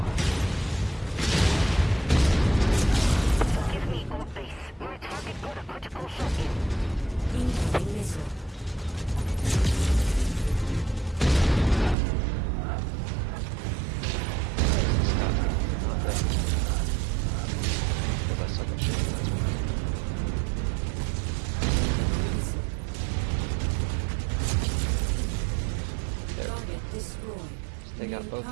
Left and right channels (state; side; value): drops out; left; at 12.0 s